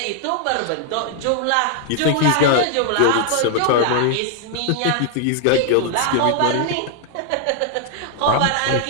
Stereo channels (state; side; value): different; both; correlation 0.00